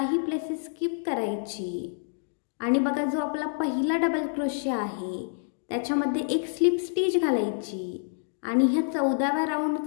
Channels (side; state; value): right; silent; digital silence